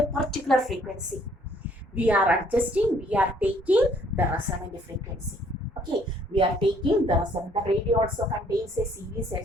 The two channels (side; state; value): both; normal; correlation 0.63